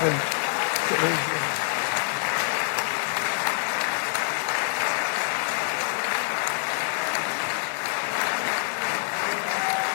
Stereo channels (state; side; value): silent; right; digital silence